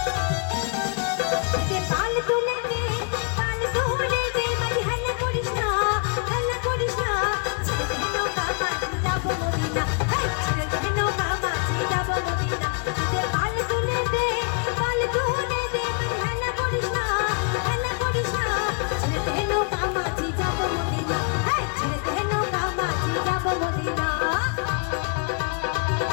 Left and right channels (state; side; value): quieter; right; 36.7 dB